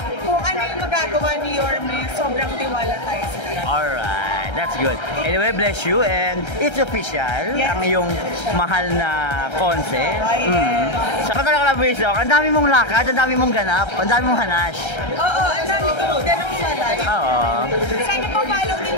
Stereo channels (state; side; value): late; right; 1.3 ms